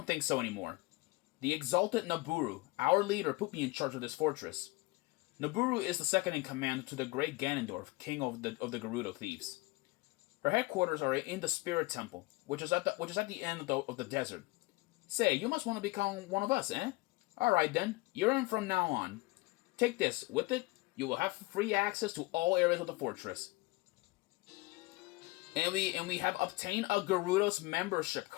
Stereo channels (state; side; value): quieter; right; 22.7 dB